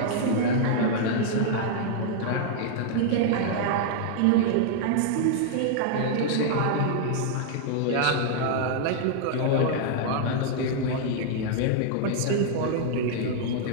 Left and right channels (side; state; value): both; different; correlation -0.01